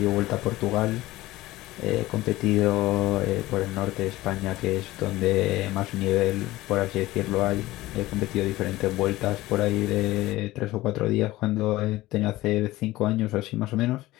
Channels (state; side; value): quieter; right; 17.6 dB